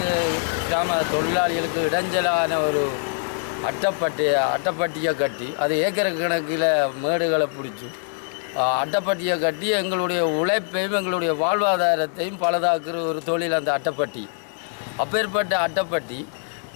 கிராம தொழிலாளிகளுக்கு இடைஞ்சலான ஒரு அட்டைப்பட்டியை கட்டி அது ஏக்கர் கணக்கில் மேடுகளை பிடிச்சி அட்டைப்பட்டியை கட்டி எங்களுடைய உழைப்பையும் எங்களுடைய வாழ்வாதாரத்தையும் பலதாக்குற ஒரு தொழில் அந்த அட்டைப்பட்டி. அப்பேற்பட்ட அட்டைப்பட்டி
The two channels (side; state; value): right; silent; digital silence